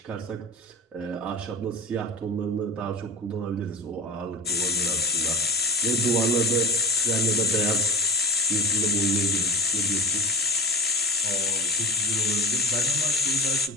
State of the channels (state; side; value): normal; both; correlation 0.33